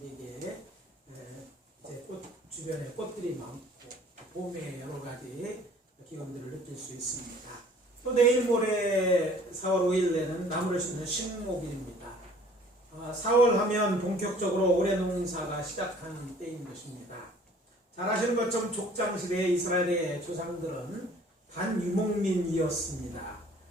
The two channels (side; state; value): both; normal; correlation 0.53